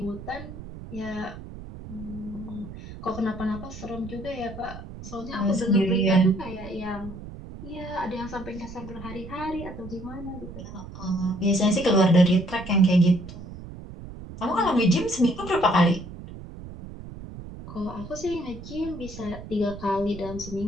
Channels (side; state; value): right; noise; rumble, 13 dB below the sound